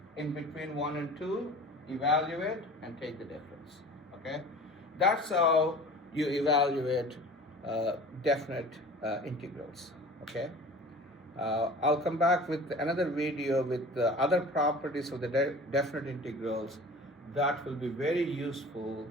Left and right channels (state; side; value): normal; both; correlation 0.41